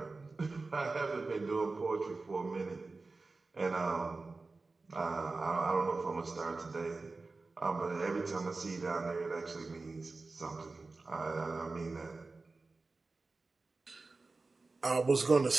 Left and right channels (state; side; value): quieter; left; 3.7 dB